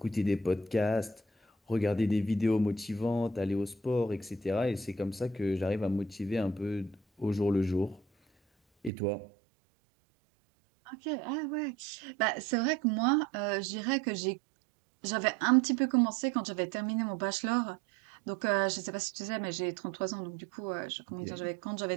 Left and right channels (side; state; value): left; drops out; at 8.9 s